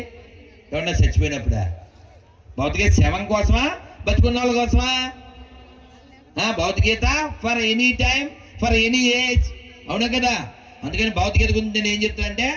ఎవరన్నా చచ్చిపోయినప్పుడా? భౌతికత శవం కోసమా, బతుకున్న వాళ్ళ కోసమా? భౌతికత for any time, for any age. అవునా కదా? అందుకని భౌతికత గురించి నేను ఏం చెప్తానంటే,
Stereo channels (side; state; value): both; identical; correlation 1.00